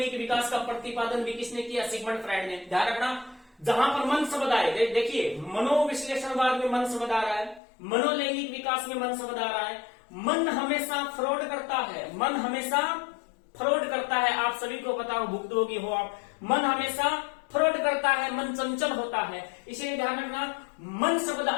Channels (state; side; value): drops out; right; at 7.6 s